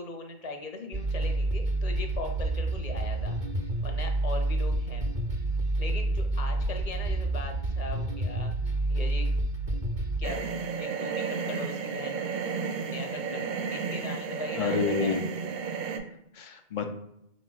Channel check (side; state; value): left; late; 2.2 ms